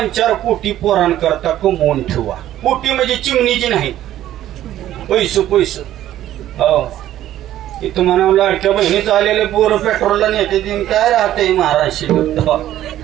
कोटी पोरांकरता कमवून ठेवा. कोटी म्हणजे चिमणीची नाही, पैसे. हो, इथं म्हणा लाडक्या बहिणीचं आलेले पोरं पेट्रोलला नेते दिन काय राहते महाराष्ट्र.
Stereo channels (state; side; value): quieter; left; 12.8 dB